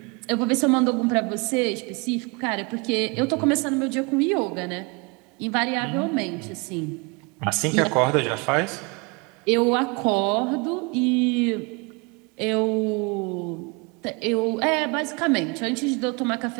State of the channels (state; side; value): quieter; left; 29.9 dB